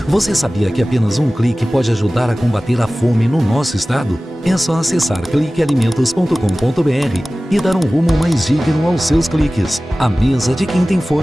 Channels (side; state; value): both; normal; correlation 0.97